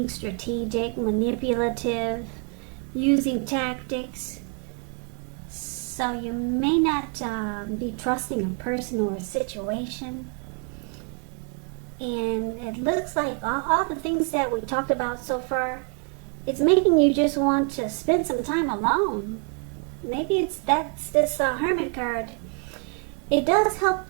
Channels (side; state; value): left; quieter; 39.9 dB